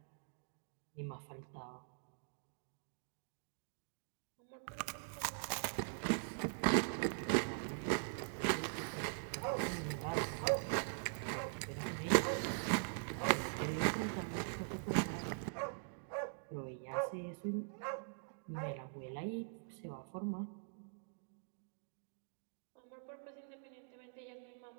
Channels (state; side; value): silent; left; digital silence